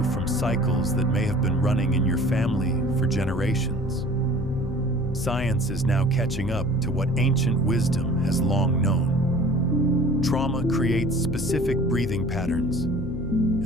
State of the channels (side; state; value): left; noise; hum, 11 dB below the sound